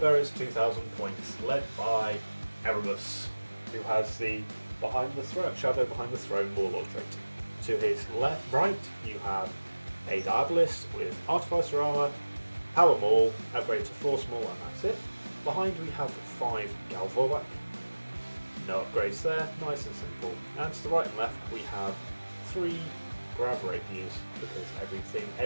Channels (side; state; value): both; inverted; correlation -1.00